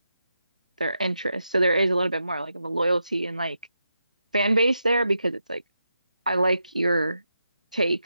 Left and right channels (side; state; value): both; inverted; correlation -0.86